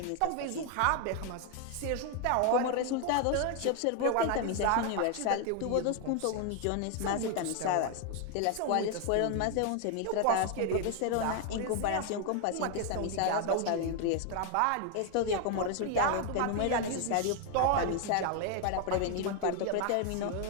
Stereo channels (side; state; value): both; different; correlation 0.01